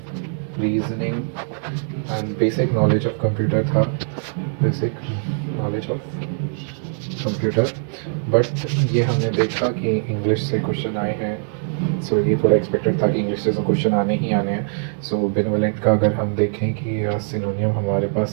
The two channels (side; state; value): left; silent; digital silence